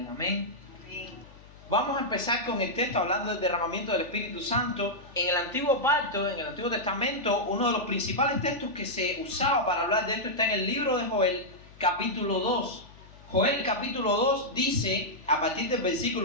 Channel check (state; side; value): noise; left; hum, 22 dB below the sound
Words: Amén. Vamos a empezar con el texto hablando del derramamiento del Espíritu Santo. En el Antiguo Pacto, en el Antiguo Testamento, uno de los principales textos que se usaba para hablar de esto está en el libro de Joel, capítulo 2. Joel capítulo 2 dice, a partir del